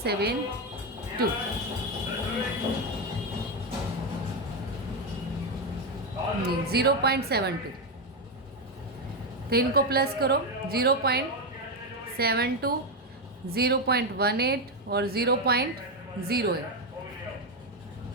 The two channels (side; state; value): both; normal; correlation 0.08